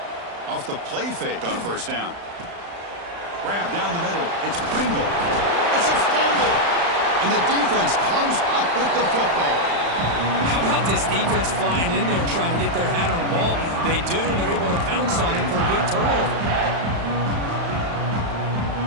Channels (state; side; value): late; left; 35 ms